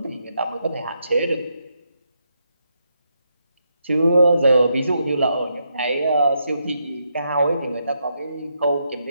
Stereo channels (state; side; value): inverted; both; correlation -0.80